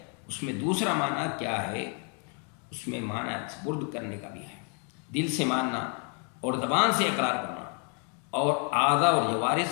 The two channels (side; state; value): right; quieter; 39.2 dB